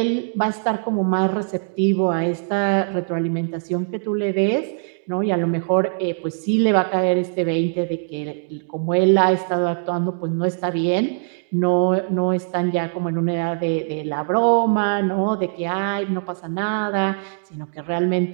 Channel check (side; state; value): left; silent; digital silence